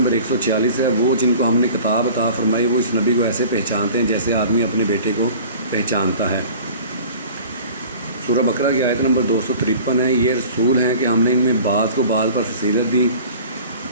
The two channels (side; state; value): both; inverted; correlation -0.44